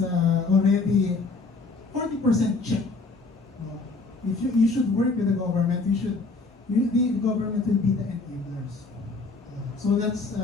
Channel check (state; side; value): quieter; right; 3.7 dB